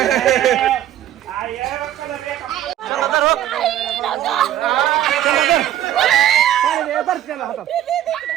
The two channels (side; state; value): left; quieter; 12.1 dB